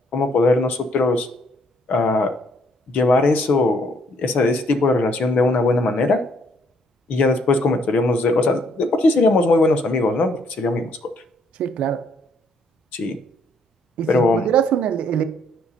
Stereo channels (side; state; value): both; normal; correlation 0.68